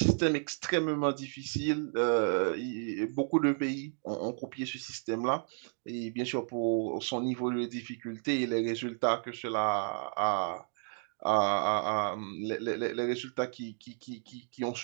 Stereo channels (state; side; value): silent; left; 56 dB below the other